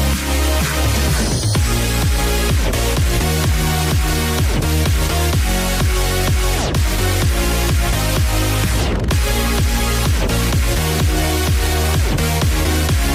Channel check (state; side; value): identical; both; correlation 1.00